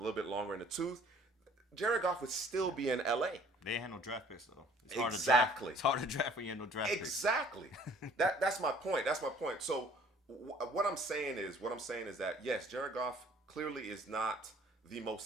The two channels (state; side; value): normal; both; correlation 0.55